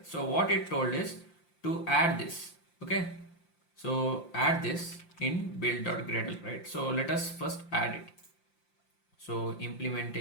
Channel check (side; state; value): right; late; 5.8 ms